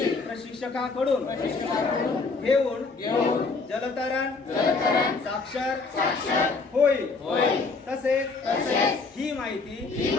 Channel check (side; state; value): right; quieter; 4.1 dB